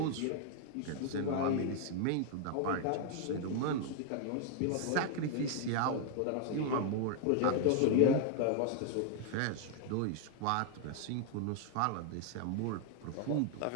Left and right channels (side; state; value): both; different; correlation 0.00